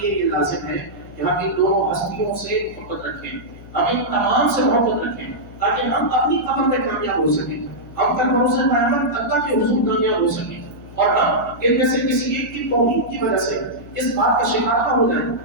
یہ لازم ہے کہ ہم ان دونوں ہستیوں سے محبت رکھیں، ہم ان تمام سے محبت رکھیں، تاکہ ہم اپنی قبر میں کامیاب ہو سکیں، ہم کل بروز قیامت اللہ کے حضور کامیاب ہو سکیں، اور ہم ان میں سے کسی ایک کی توہین کی وجہ سے اس بات کا شکار نہ ہو جائیں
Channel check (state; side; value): noise; left; hum, 18 dB below the sound